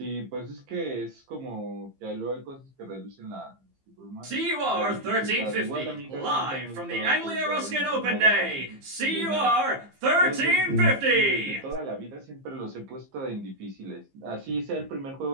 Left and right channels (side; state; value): left; late; 15 ms